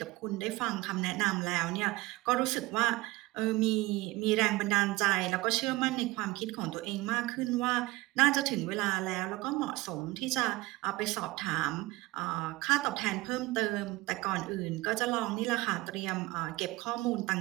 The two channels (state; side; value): quieter; left; 20.8 dB